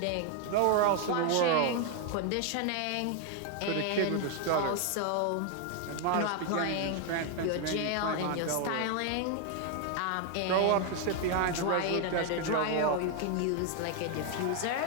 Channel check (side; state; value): both; different; correlation 0.00